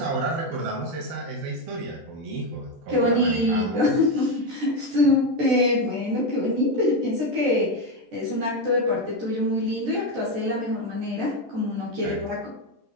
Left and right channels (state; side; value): late; left; 13 ms